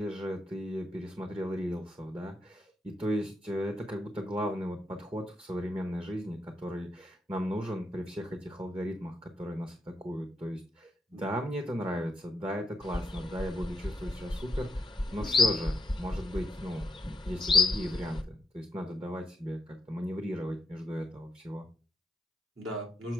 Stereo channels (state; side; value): normal; both; correlation 0.78